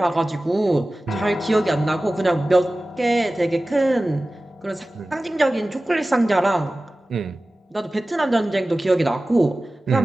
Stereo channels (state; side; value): normal; both; correlation 0.97